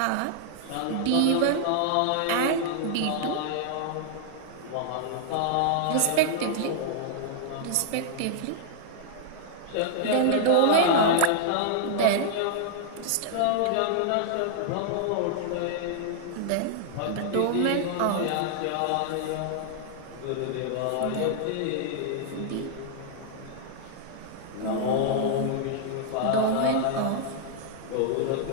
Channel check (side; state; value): both; different; correlation -0.01